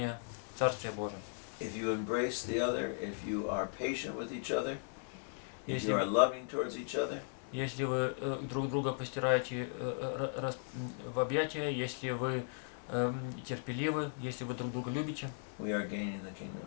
Царствия Божия. If you embrace the other, if you are patient with each other, if you are loving towards each other, Если вы друг друга постираете в объятия, если вы терпеливы, если вы друг друга любите, we are gaining the kingdom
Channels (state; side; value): silent; right; 53 dB below the other